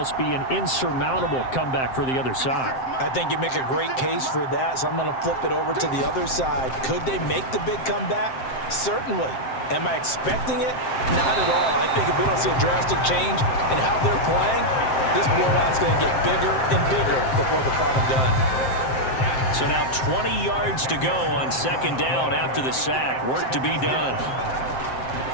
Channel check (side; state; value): right; late; 7.6 ms